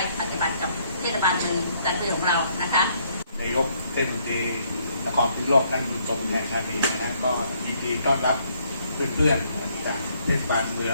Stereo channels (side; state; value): both; inverted; correlation -0.69